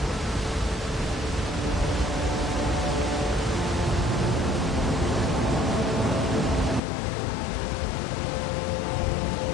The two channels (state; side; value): drops out; right; at 6.8 s